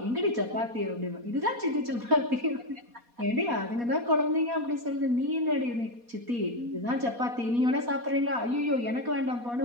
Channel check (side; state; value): left; late; 4.2 ms